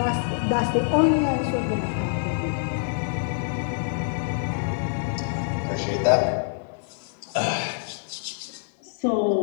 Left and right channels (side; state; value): right; silent; digital silence